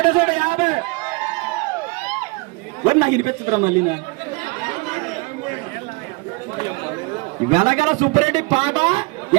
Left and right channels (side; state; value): left; quieter; 27.6 dB